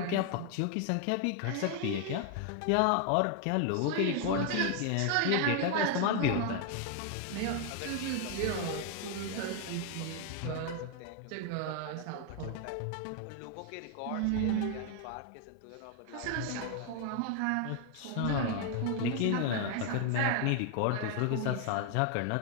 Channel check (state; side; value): different; both; correlation 0.01